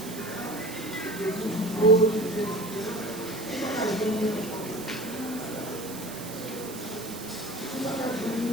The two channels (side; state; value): right; noise; hiss, 12 dB below the sound